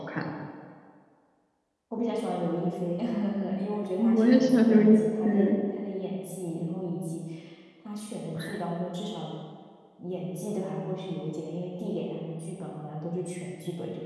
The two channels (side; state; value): both; identical; correlation 1.00